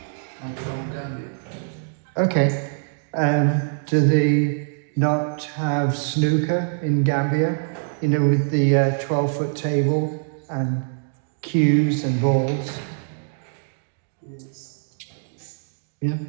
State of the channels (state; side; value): silent; left; digital silence